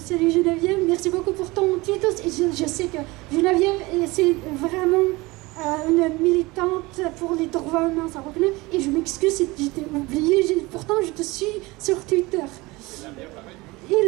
Geneviève, merci beaucoup pour ton titre. Et je sais que Geneviève, c'est vraiment une militante pour les droits humains, ça reconnaît. Et je m'excuse si je t'ai oublié, pourtant je te suis sur Twitter.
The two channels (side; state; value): left; quieter; 22.3 dB